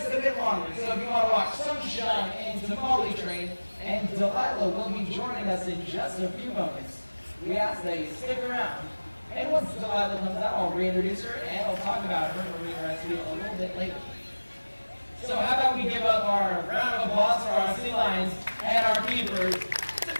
a bit longer, so if you want to watch Sunshine and Tamale train, and Delilah will be joining us in just a few moments. We ask that you stick around. And once Delilah comes out, I'll reintroduce her and I'll talk about her marine rescue a little bit later. So how about we give up our round of applause for our sea lions and our keepers. It's a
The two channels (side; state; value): both; inverted; correlation -1.00